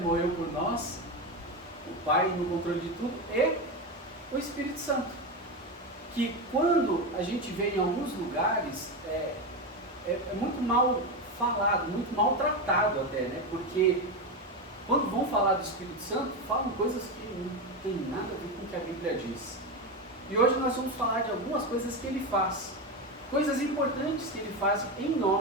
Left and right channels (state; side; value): normal; both; correlation 0.15